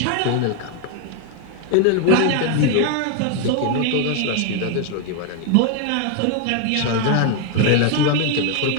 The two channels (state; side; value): different; both; correlation 0.01